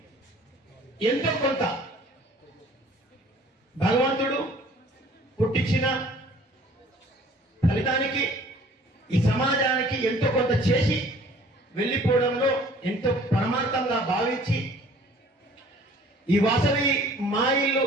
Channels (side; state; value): both; normal; correlation 0.53